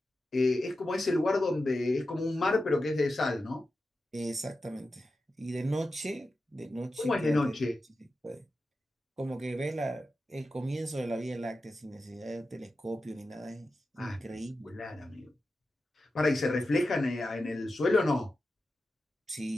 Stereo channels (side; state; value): both; normal; correlation 0.91